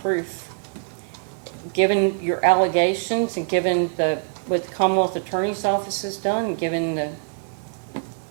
proof, given your allegations and given what the Commonwealth Attorney's Office has done, given the...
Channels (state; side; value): silent; left; digital silence